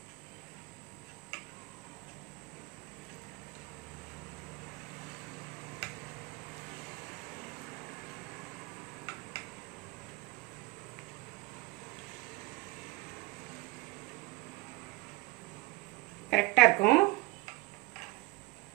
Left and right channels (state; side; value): quieter; left; 21.7 dB